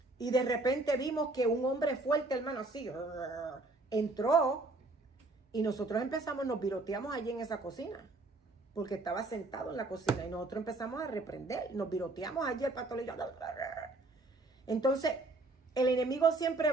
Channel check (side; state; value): left; quieter; 3.1 dB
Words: Y de repente vimos que un hombre fuerte, hermano, así, entró y nosotros nos viroteamos allí en esa cocina. Porque estaba sentado en la cocina y nosotros empezamos a reprender. Nos viroteamos allí, el pastor y yo. Entonces, el enemigo siempre